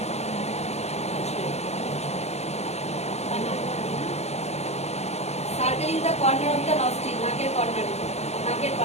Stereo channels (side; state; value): right; late; 0.31 ms